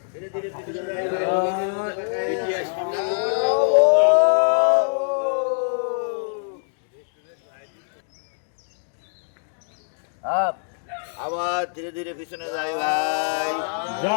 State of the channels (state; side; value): silent; right; 62 dB below the other